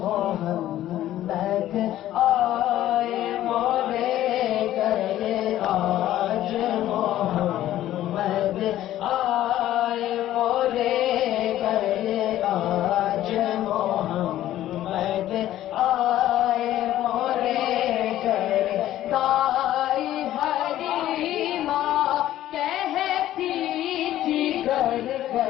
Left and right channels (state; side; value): quieter; right; 13.3 dB